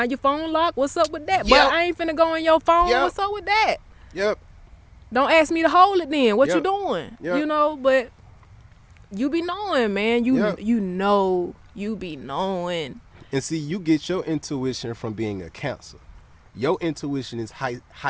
your phone locked. What's up with that? Yep. But I ain't finna go on your phone. Yep. What's up with that? Yep. Don't ask me to hold it then. What you Yep. doing? Yep. You know, but you be knowing, man. Yep. You know, you be knowing. And see, you get your intuition from being a Cancer. Your intuition is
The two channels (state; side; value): identical; both; correlation 1.00